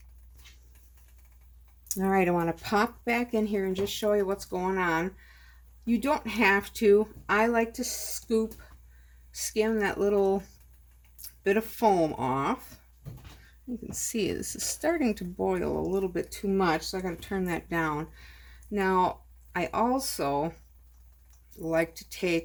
All right, I want to pop back in here and just show you what's going on. You don't have to. I like to skim that little bit of foam off. You can see this is starting to boil a little bit too much, so I got to turn that down. Now, I also like to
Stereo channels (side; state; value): both; identical; correlation 1.00